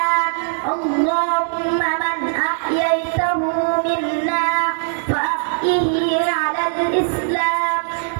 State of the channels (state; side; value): silent; left; digital silence